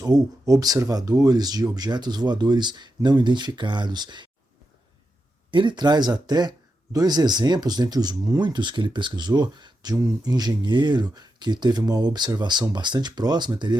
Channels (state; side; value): normal; both; correlation 0.87